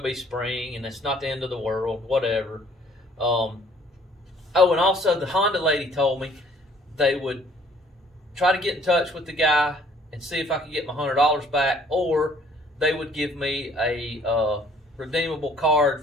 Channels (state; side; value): normal; both; correlation 0.58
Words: be spring, and it's not the end of the world, whatever. Oh, and also the Honda lady told me they would try to get in touch with the guy and see if I could get my $100 back, or they would give me a redeemable